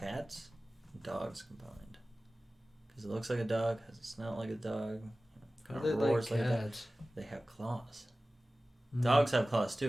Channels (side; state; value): both; normal; correlation 0.97